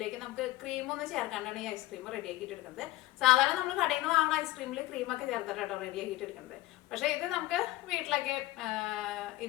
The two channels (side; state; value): right; quieter; 17.3 dB